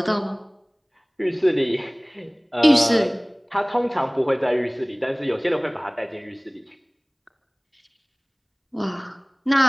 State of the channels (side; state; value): both; identical; correlation 1.00